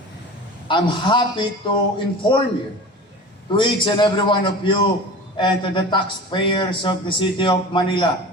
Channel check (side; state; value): both; normal; correlation 0.35